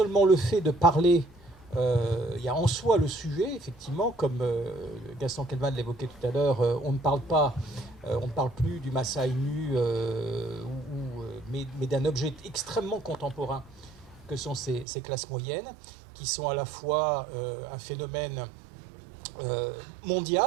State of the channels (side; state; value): left; drops out; at 14.9 s